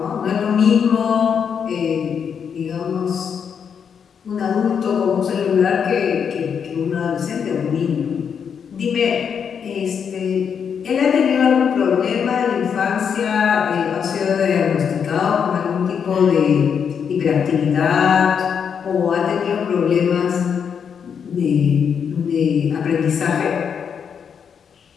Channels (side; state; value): right; quieter; 7.1 dB